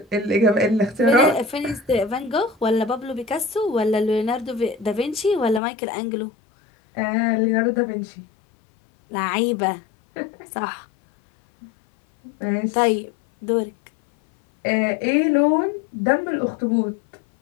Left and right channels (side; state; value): right; drops out; at 5.6 s